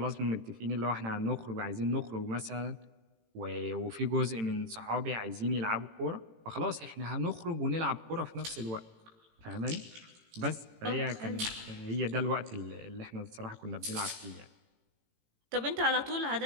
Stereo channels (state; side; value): late; left; 18 ms